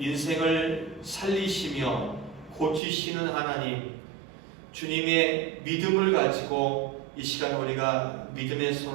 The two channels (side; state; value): left; drops out; at 2.8 s